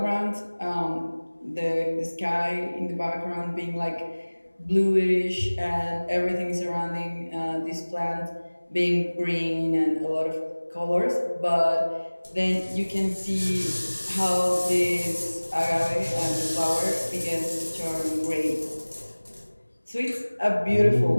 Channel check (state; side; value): inverted; both; correlation -1.00